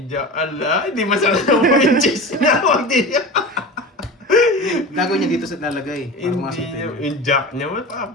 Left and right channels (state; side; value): normal; both; correlation 0.31